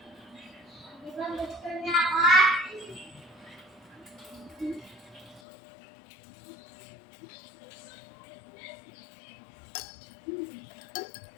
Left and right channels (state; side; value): drops out; right; at 5.4 s